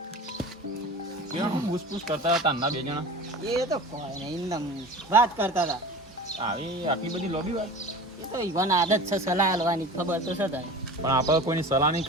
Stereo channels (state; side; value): normal; both; correlation 0.36